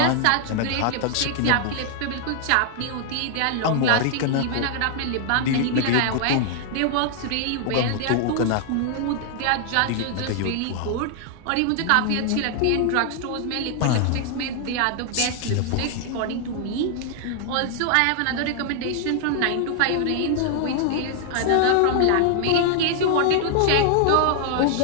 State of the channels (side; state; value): both; different; correlation 0.00